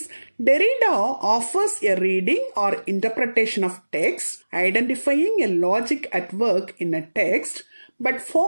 Derrida offers a reading or interpretation of text, identifying a logic at work in a text, but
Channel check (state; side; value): inverted; both; correlation -1.00